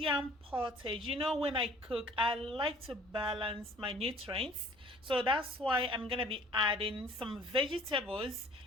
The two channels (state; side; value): normal; both; correlation 0.53